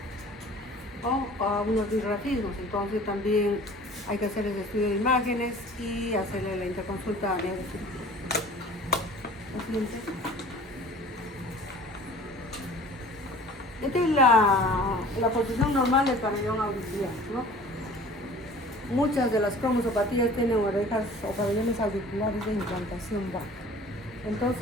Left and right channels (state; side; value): normal; both; correlation 0.46